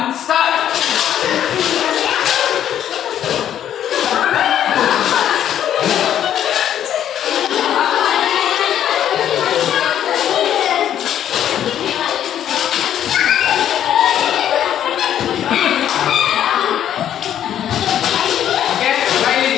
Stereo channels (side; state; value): right; quieter; 10.4 dB